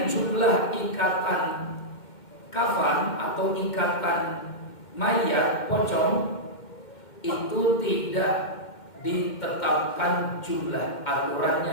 jumlah ikatan kafan atau ikatan mayat pocong, itu tidak ditetapkan jumlah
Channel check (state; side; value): late; right; 2.1 ms